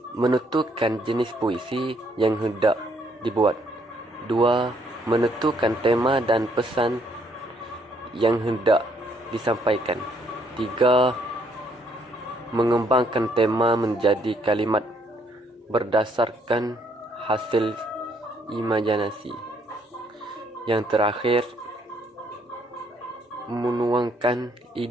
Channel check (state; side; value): normal; both; correlation 0.68